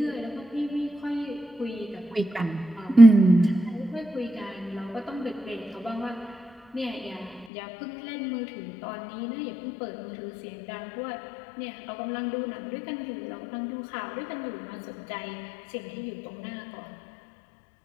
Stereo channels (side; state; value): right; drops out; at 7.5 s